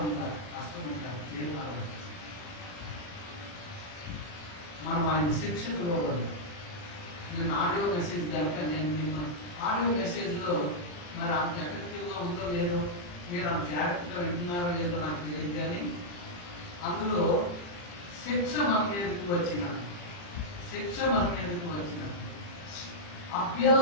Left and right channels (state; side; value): late; right; 40 ms